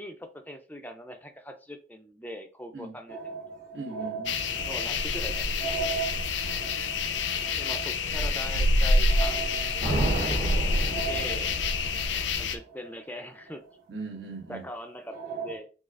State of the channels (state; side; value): normal; both; correlation 0.48